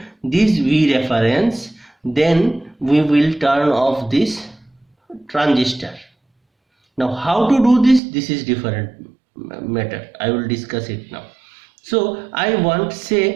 this V reference, then we will turn off this transistor. Now how to do this? This is different matter. I will discuss it now. So I want,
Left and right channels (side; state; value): left; drops out; at 8.0 s